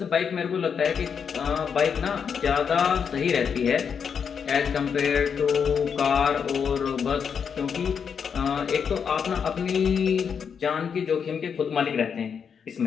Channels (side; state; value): right; quieter; 6.8 dB